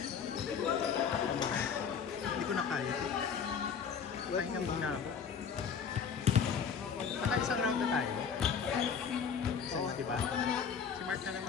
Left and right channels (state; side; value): quieter; right; 6.7 dB